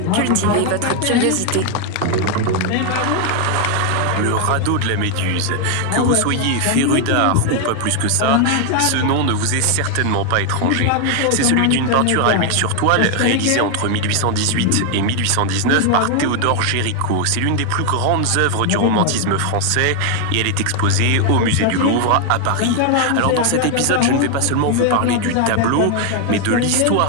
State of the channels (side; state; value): both; different; correlation 0.01